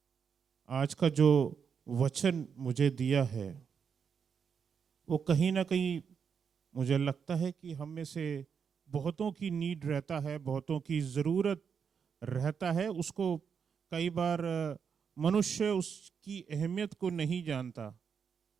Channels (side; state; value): left; quieter; 6.7 dB